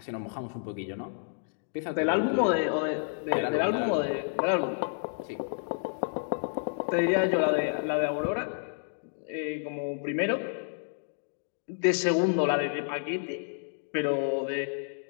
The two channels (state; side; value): silent; right; digital silence